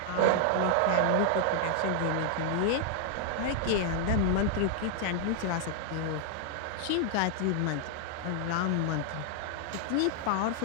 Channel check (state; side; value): different; both; correlation 0.00